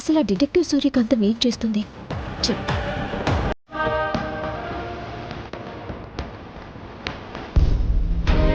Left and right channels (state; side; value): identical; both; correlation 1.00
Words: ఆ డిటెక్టివ్ సూర్యకాంతం ఏం చేస్తుంది చెప్పు.